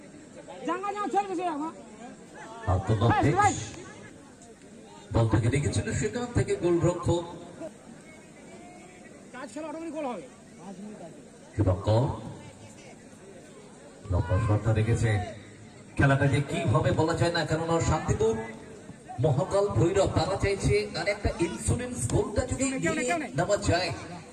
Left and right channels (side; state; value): both; identical; correlation 1.00